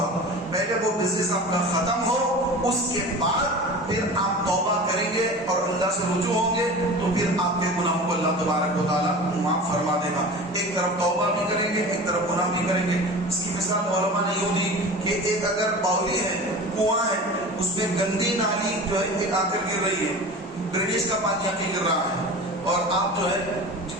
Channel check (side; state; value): both; normal; correlation 0.35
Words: پہلے وہ بزنس آپ کا ختم ہو، اس کے بعد پھر آپ توبہ کریں گے اور اللہ سے رجوع ہوں گے تو پھر آپ کے گناہوں کو اللہ تبارک و تعالیٰ معاف فرما دے گا. ایک طرف توبہ بھی کریں گے، ایک طرف گناہ بھی کریں گے. اس کی مثال علماء نے یوں دی کہ ایک اگر باولی ہے، کنواں ہے، اس میں گندی نالی جو ہے ایک آ کر گر رہی ہے، ڈرینیج کا پانی آ کے گر رہا ہے، اور آپ جو ہے